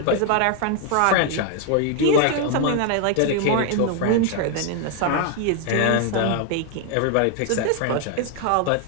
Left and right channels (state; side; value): different; both; correlation 0.00